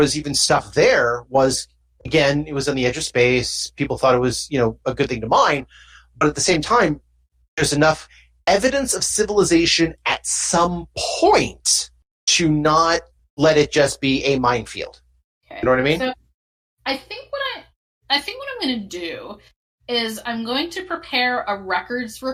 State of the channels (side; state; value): both; identical; correlation 1.00